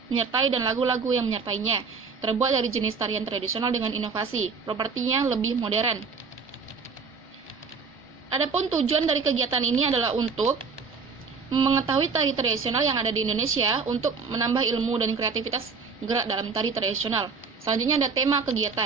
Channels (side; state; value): left; quieter; 5.1 dB